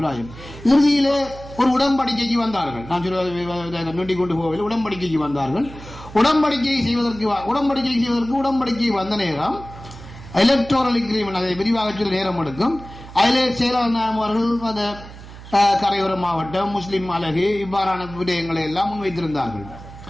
இறுதியிலே ஒரு உடன்படிக்கைக்கு வந்தார்கள். நான் சொல்ல நொண்டி கொண்டு போகவில்லை, உடன்படிக்கைக்கு வந்தார்கள். உடன்படிக்கை செய்வதற்கு உடன்படிக்கை வந்த நேரம் எலக்டோரல் அக்ரீமெண்ட், அதை விரிவாக சொல்ல நேரம் எடுக்கும். அதிலே செயலாளர் அவர்கள் அந்த கரையோர மாவட்டம், முஸ்லிம் அழகு, இவ்வாறான விடயங்களை எல்லாம் முன்வைத்திருந்தார்கள்.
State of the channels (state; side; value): noise; right; hum, 16 dB below the sound